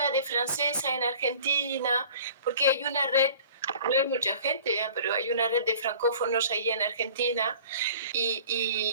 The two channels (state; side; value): inverted; both; correlation -0.47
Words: de francesa en Argentina, porque hay una red, no hay mucha gente, pero hay una red de francófonos ahí en Argentina